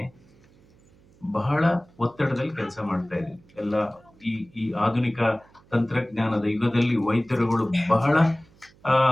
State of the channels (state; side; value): noise; right; hum, 29 dB below the sound